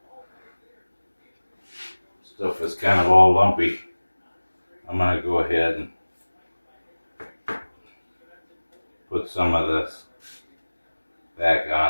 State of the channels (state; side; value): inverted; both; correlation -1.00